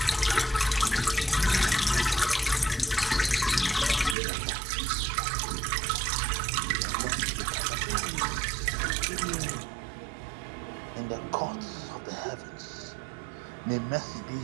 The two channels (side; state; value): left; drops out; at 4.2 s